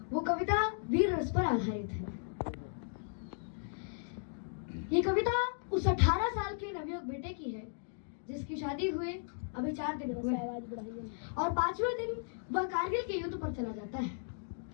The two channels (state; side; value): silent; right; digital silence